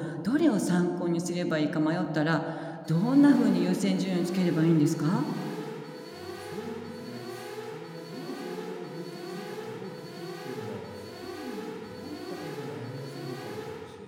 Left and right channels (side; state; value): both; identical; correlation 1.00